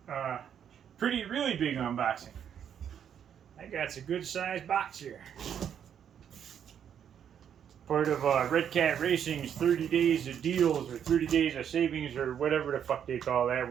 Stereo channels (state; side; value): quieter; left; 8.7 dB